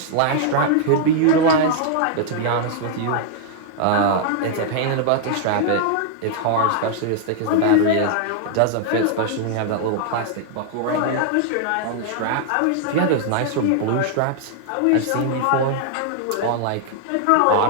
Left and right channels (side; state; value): both; different; correlation -0.01